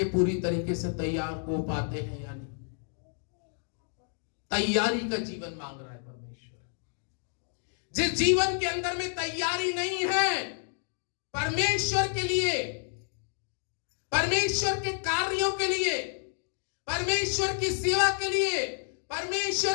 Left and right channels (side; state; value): right; silent; 58 dB below the other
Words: पूरी तरीके से तैयार हो पाते हैं या नहीं? तैयारी का जीवन मांग रहा है परमेश्वर। जिस जीवन के अंदर में तैयारी नहीं है परमेश्वर के लिए, परमेश्वर के कार्यों के लिए, परमेश्वर की सेवा के लिए,